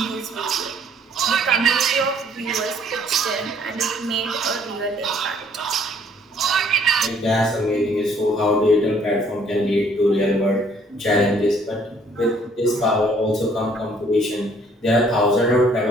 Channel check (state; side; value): normal; both; correlation 0.62